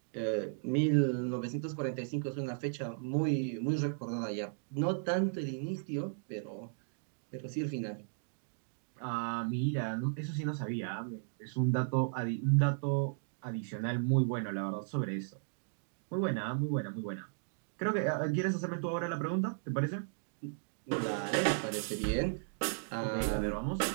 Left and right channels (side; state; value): left; silent; digital silence